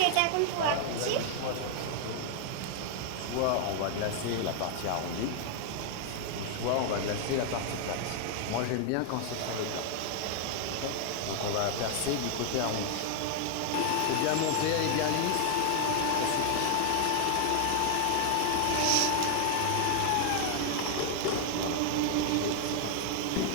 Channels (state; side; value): different; both; correlation 0.00